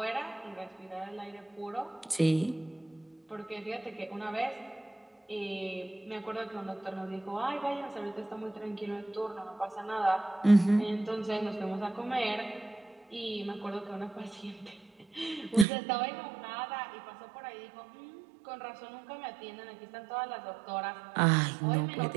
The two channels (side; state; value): left; drops out; at 15.7 s